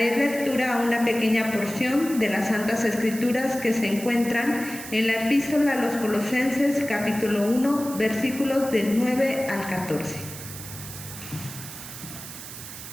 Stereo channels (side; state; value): right; noise; hiss, 12 dB below the sound